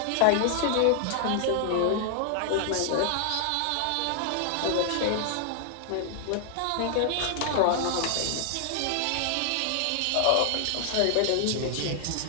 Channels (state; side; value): different; both; correlation 0.00